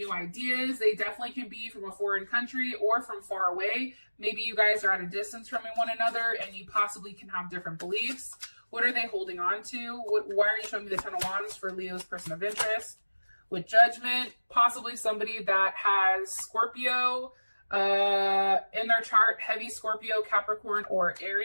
ideas. They definitely can be from a foreign country or from far away. Maybe you guys are at a distance from one another and you possibly can have different beliefs. What are they holding on to? Why are you showing me the 10 of Wands for Leo's person of interest? With Judgment, possibly somebody that has Scorpio in their chart, heavy Scorpio, Capricorn, or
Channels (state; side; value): inverted; both; correlation -1.00